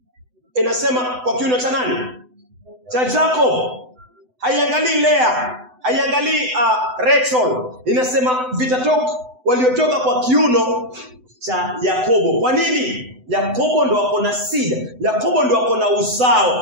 Inasema kwa kiuno cha nani? Cha Jacob. Haiangalii Lea, haiangalii Rachel. Inasema waliotoka kwa kiuno cha Yakobo. Kwa nini? Yakobo ndo wako na seed. Yakobo ndo wako na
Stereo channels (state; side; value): late; left; 7.9 ms